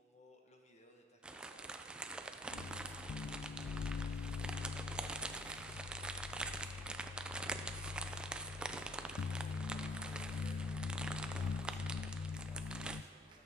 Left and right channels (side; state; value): both; normal; correlation 0.60